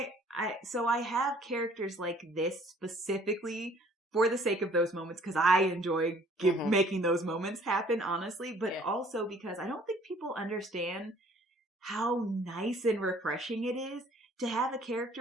so I have characters like this specifically for the sake of those moments, because I enjoy making those moments happen, honestly, but also because I don't think people understand how nice and refreshing it is to have a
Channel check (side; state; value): both; normal; correlation 0.57